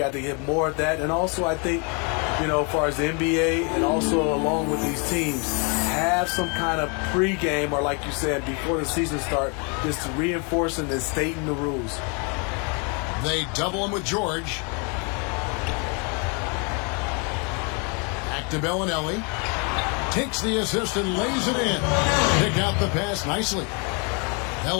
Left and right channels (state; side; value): quieter; right; 34.9 dB